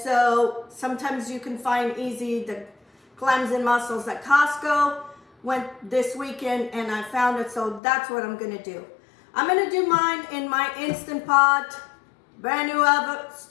sometimes you can find easy the clams and mussels at Costco. Went this weekend and I found it, so that's what I'm gonna do. I'm gonna do mine in my Instant Pot, brand new oven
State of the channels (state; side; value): drops out; right; at 7.8 s